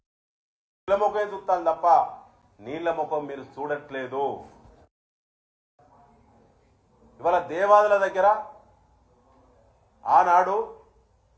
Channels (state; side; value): identical; both; correlation 1.00